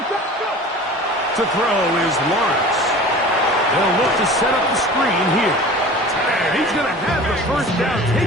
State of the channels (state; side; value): normal; both; correlation 0.40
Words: To throw is Lawrence. They'll look to set up the screen here. And he's going to have the 1st down